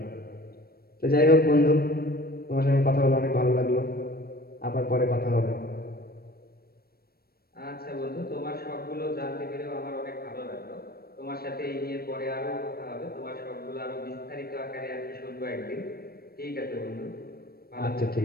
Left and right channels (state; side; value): late; right; 0.44 ms